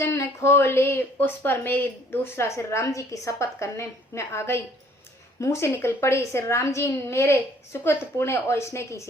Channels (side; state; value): both; normal; correlation 0.59